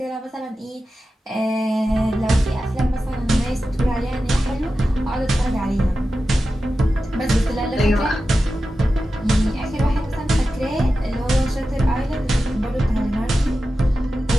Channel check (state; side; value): normal; both; correlation 0.92